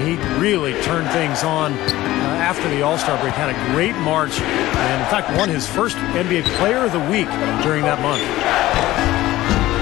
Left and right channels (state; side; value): quieter; right; 16.4 dB